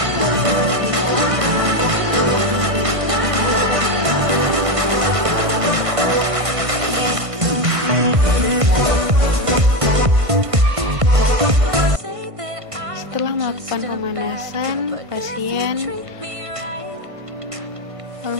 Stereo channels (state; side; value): late; left; 1.5 ms